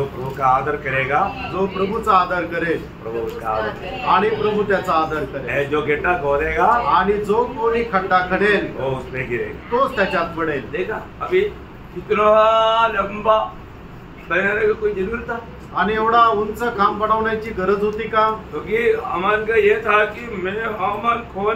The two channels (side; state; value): both; identical; correlation 1.00